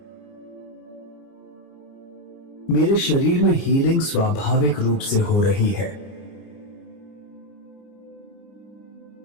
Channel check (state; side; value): late; right; 29 ms